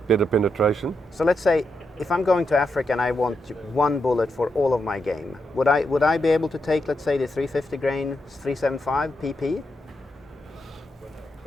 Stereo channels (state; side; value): normal; both; correlation 0.84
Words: better penetration. So let's say if I'm going to Africa and I want one bullet for all of my game, would I be able to take, let's say, the 350 grain 375 PP?